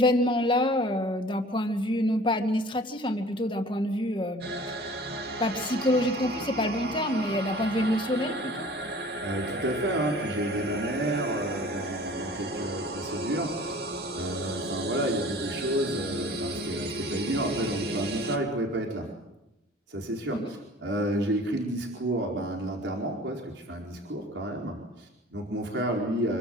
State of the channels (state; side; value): normal; both; correlation 0.46